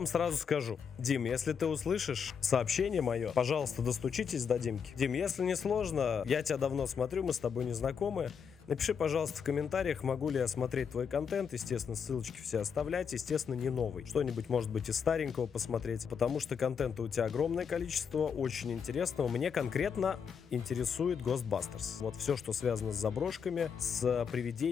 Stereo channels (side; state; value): right; quieter; 6.8 dB